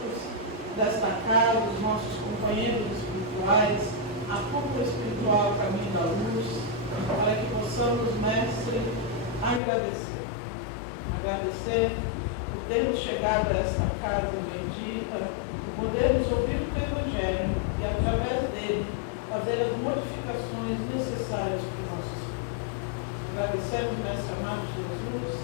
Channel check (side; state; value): right; drops out; at 9.6 s